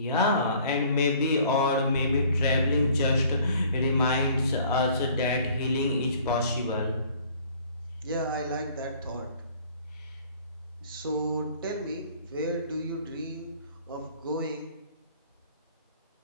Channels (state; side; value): inverted; both; correlation -0.54